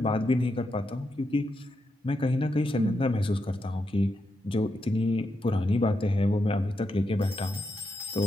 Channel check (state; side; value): normal; both; correlation 0.84